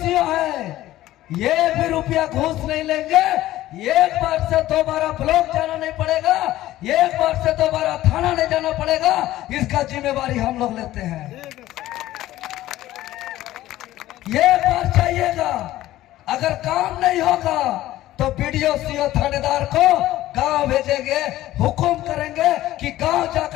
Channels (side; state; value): right; quieter; 15.0 dB